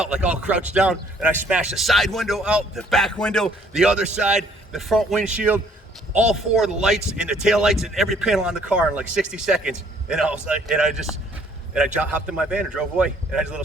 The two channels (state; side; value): normal; both; correlation 0.62